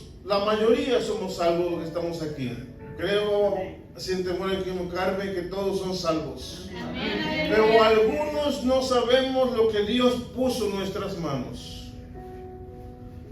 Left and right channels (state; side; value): identical; both; correlation 1.00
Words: la mayoría somos salvos los que estamos aquí? Creo, sin temor a equivocarme, que todos son salvos. Pero algunos no sabemos lo que Dios puso en nuestras manos.